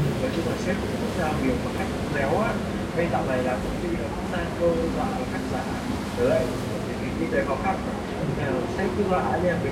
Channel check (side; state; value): both; identical; correlation 1.00